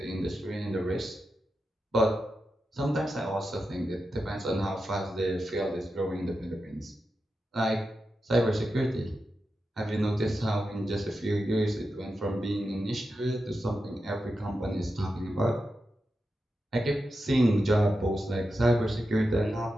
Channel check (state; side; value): normal; both; correlation 0.90